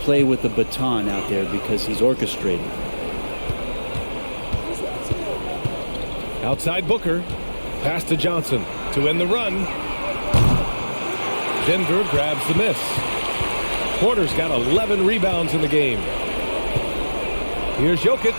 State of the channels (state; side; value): inverted; both; correlation -1.00